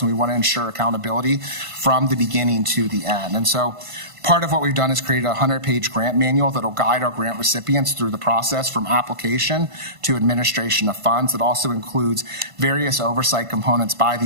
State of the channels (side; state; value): left; late; 1.5 ms